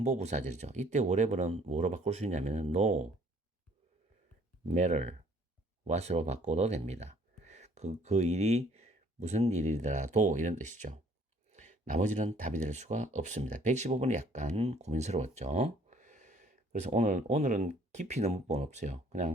이때 whatever는 뭐로 바꿀 수 있냐면 no matter what으로 바꿔도 됩니다. 그 일이 무슨 일이더라도 이런 뜻이죠. 나머지는 답이 될 수가 없습니다. 115번이 약간 고민스러웠죠. 그래서 오늘은 깊이 있는 문법은 없어요.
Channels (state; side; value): normal; both; correlation 0.59